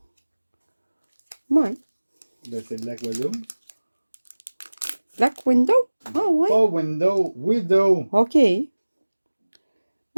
Ouais. Ben, c'est Black Widow. Black Window? Ah ouais. Pas Window, Widow. OK.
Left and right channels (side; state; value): both; inverted; correlation -1.00